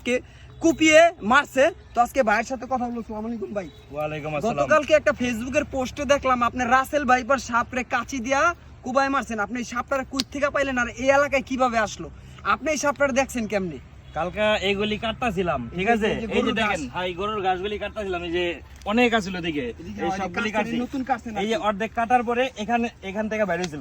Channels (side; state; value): both; identical; correlation 1.00